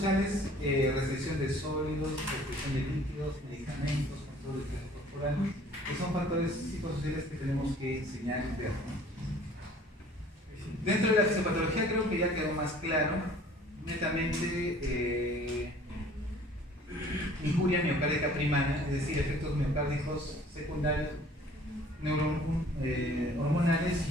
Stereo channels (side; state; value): both; normal; correlation 0.52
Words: restricción de sólidos, restricción de líquidos, medicamentos, control de peso corporal, que son factores psicosociales que tenemos que enseñar y ver, ¿no? Dentro de la fisiopatología creo que ya quedó más claro, netamente injuria miocárdica primaria, es decir, efectos miocárdicos secundarios, hormonales